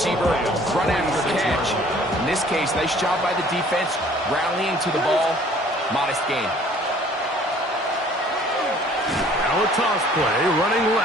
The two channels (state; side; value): normal; both; correlation 0.55